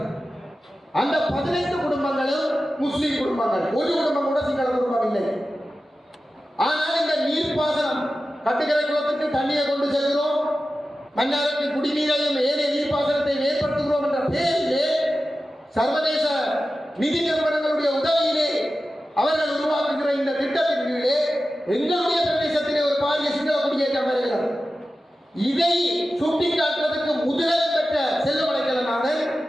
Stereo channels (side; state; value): both; normal; correlation 0.94